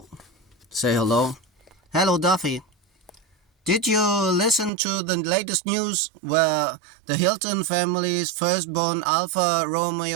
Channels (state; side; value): drops out; left; at 4.7 s